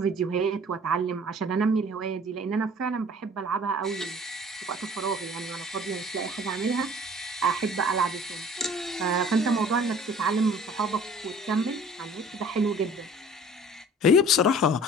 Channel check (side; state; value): both; normal; correlation 0.49